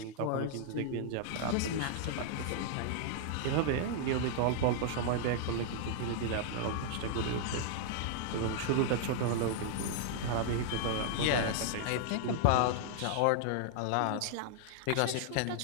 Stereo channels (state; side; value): different; both; correlation -0.01